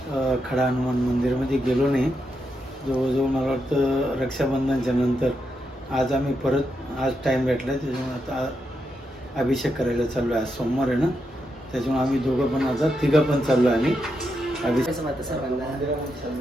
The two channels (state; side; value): normal; both; correlation 0.84